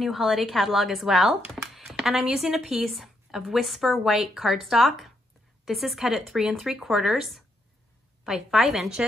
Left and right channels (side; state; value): both; normal; correlation 0.78